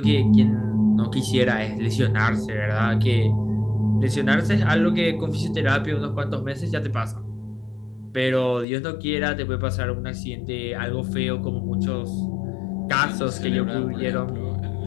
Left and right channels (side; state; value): right; drops out; at 8.7 s